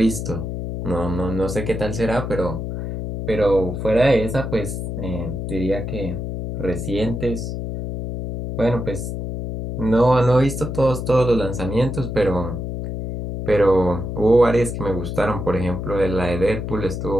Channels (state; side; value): noise; left; hum, 5 dB below the sound